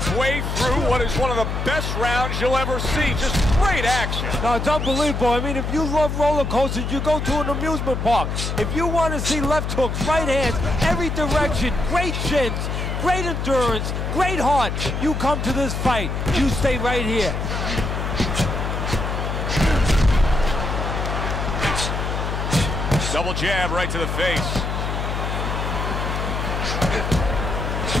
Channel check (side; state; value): left; noise; hum, 2 dB below the sound